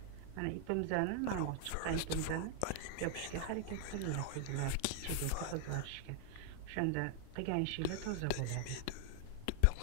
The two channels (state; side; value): different; both; correlation -0.01